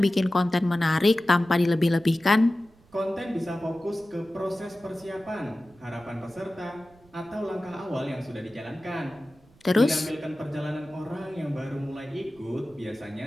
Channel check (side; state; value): right; noise; rumble, 28 dB below the sound